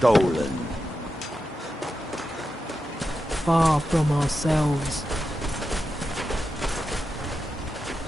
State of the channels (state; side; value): normal; both; correlation 0.89